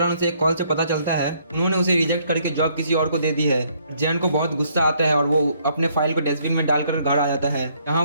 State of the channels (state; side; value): inverted; both; correlation -0.67